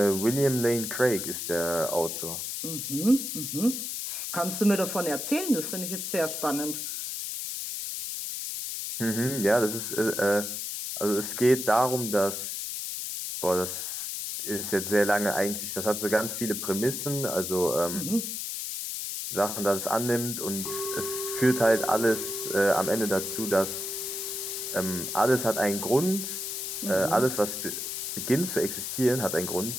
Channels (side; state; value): left; noise; hiss, 4 dB below the sound